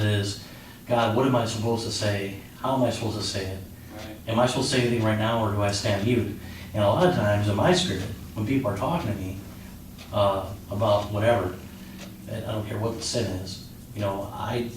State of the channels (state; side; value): identical; both; correlation 1.00